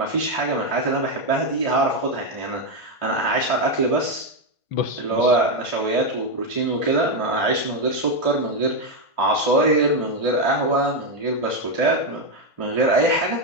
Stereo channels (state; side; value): late; right; 1.5 ms